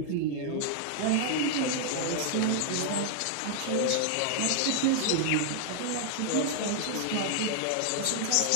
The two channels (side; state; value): both; different; correlation 0.00